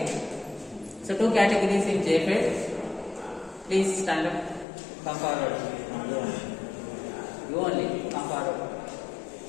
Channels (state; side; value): drops out; right; at 4.7 s